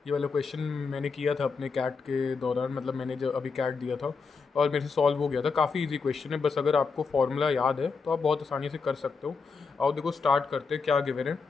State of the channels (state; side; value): quieter; right; 4.9 dB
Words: वाला क्वेश्चन मैंने किया था अपने कैट के दौरान, मतलब मैंने जब अभी कैट दिया था और मेरे से सॉल्व हो गया था। काफ़ी इजी क्वेश्चन है, बस अगर आपको फॉर्मूला याद है तो आप बहुत आसानी से कर सकते हो। आओ देखो स्टार्ट करते हैं। क्या गिवन है?